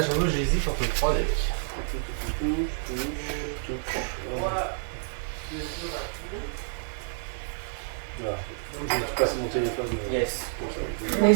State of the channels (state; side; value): silent; left; digital silence